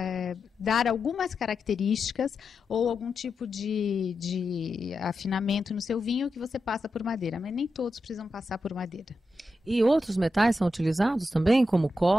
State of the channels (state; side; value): normal; both; correlation 0.88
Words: dar algumas características ou algum tipo de afinamento no seu vinho que você passa por madeira, mas nem todos precisam passar por madeira. E outros metais são utilizados também, como